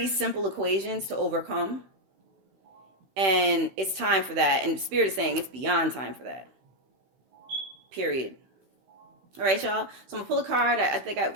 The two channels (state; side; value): late; left; 15 ms